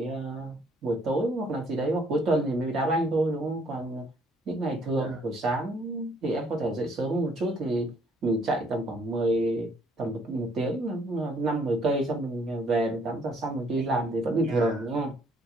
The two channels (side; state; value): both; normal; correlation 0.64